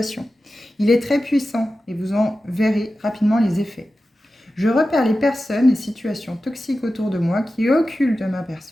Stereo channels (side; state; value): both; normal; correlation 0.93